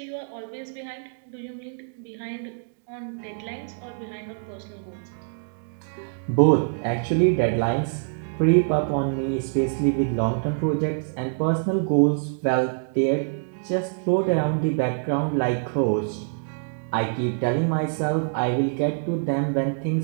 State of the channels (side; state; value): left; silent; digital silence